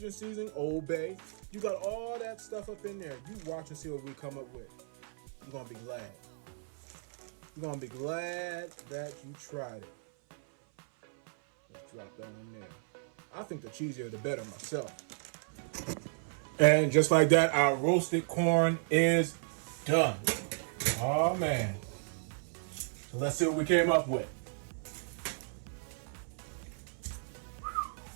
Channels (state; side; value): silent; left; 55 dB below the other